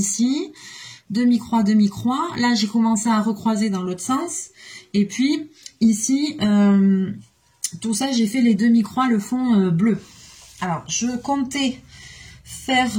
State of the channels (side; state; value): both; identical; correlation 1.00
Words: demi-croix, demi-croix. Là j'ai commencé à recroiser dans l'autre sens. Et puis ici, tout ça j'ai fait les demi-croix, le fond bleu. Alors, je comptais faire